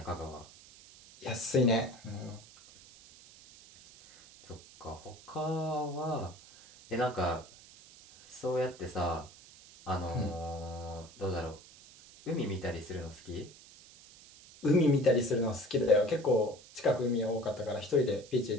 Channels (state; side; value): noise; right; hiss, 21 dB below the sound